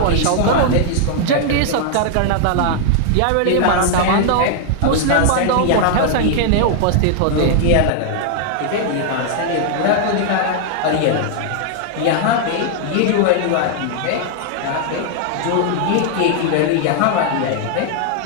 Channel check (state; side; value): different; both; correlation 0.00